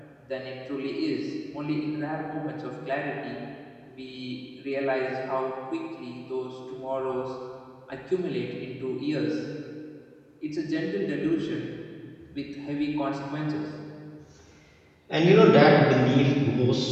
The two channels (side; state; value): both; identical; correlation 1.00